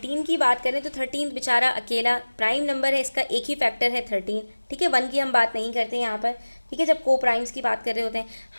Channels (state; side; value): inverted; both; correlation -1.00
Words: की बात करें तो 13 बेचारा अकेला प्राइम नंबर है, इसका एक ही फैक्टर है 13। ठीक है, 1 की हम बात नहीं करते यहाँ पर। ठीक है, जब को प्राइम्स की बात कर रहे होते हैं।